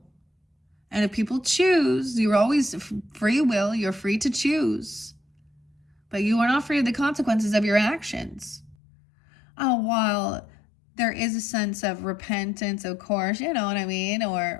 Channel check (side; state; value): right; drops out; at 8.8 s